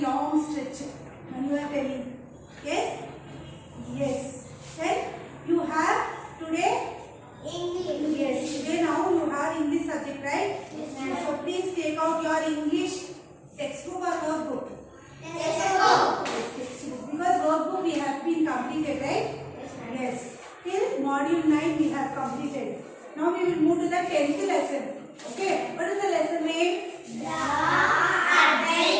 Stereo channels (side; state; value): both; identical; correlation 1.00